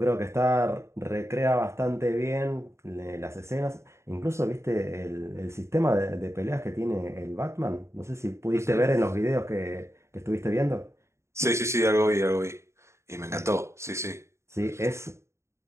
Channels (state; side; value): late; left; 0.13 ms